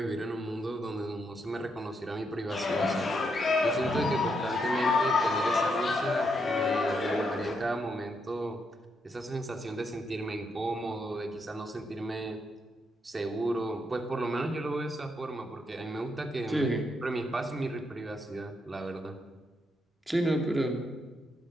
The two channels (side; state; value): both; normal; correlation 0.79